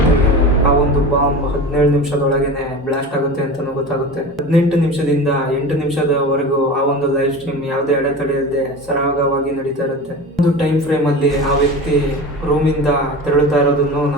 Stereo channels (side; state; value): both; normal; correlation 0.31